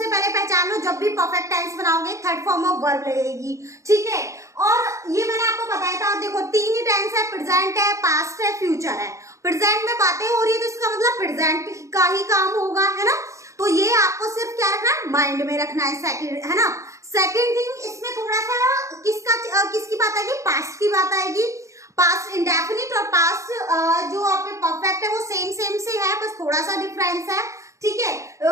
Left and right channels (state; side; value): late; left; 0.15 ms